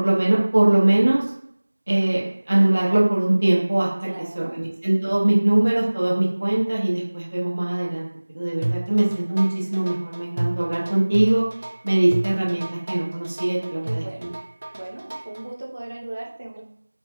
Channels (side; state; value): both; inverted; correlation -1.00